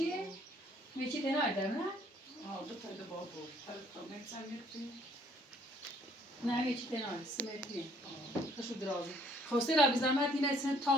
یه چی تنهای دارم نه؟ ها دو تا با بود هر تا نکسن میکنی نه یه چی تنهای سمتیه. خشو درازی. خواسته را بی زحمت این اصلا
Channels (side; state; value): both; normal; correlation 0.62